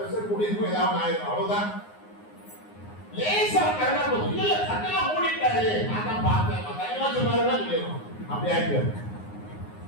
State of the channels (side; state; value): right; late; 9.6 ms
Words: கூடி இருக்கும், ஏதாவது ஆயிரும், அவ்வளவுதான். லேசா கரெக்டா போதும். இல்ல கண்ணெல்லாம் மூடிட்டாரு, நான் தான் பார்த்தேன், கண்ணெல்லாம் சொன்னாருதான் சொல்லிடுவோம். அப்படி ஆயிட்டு